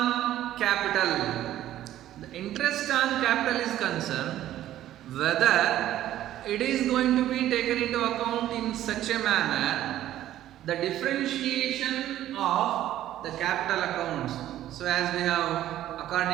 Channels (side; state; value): left; quieter; 13.0 dB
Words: capital. The interest on capital is concerned whether it is going to be taken into account in such a manner, the differentiation of the capital accounts. So as we have,